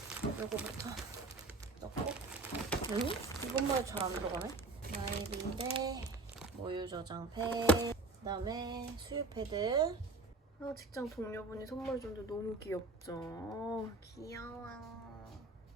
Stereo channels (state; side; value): quieter; left; 3.4 dB